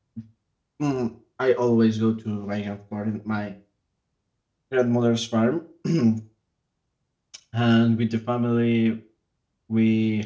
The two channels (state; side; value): identical; both; correlation 1.00